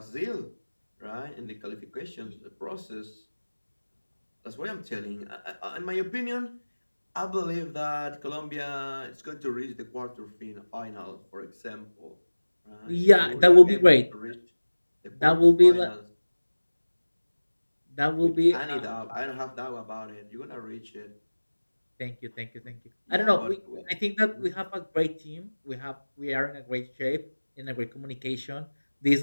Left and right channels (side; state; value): both; inverted; correlation -1.00